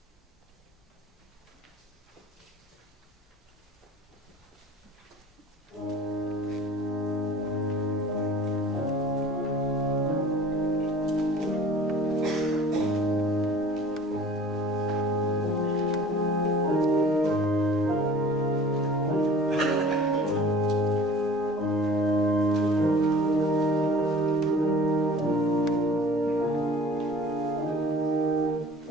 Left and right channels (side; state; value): both; normal; correlation 0.46